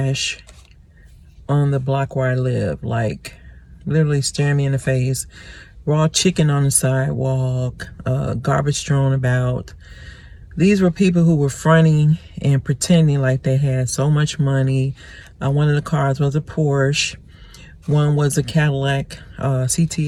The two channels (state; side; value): identical; both; correlation 1.00